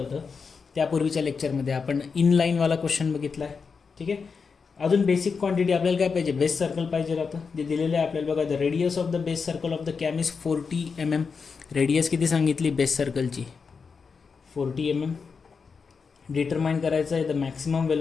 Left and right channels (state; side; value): quieter; right; 5.4 dB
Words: त्यापूर्वीच्या लेक्चरमध्ये आपण इनलाईनवाला क्वेश्चन बघितला आहे. ठीक आहे, अजून बेसिक क्वांटिटी आपल्याला काय पाहिजे, बेस सर्कल पाहिजे राहतं, जे दिलेलं आहे आपल्याला. बघा the radius of the base circle of the cam is 40 mm. Radius किती सांगितली बेस सर्कलची, 40 mm. डिटरमाइन करायचं आहे the maximum